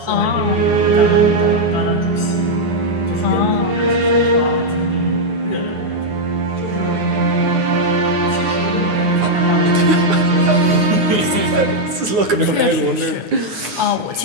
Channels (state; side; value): late; left; 9.7 ms